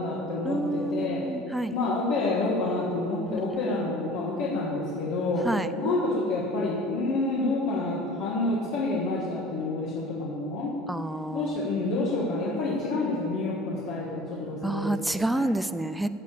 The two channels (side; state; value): both; normal; correlation 0.46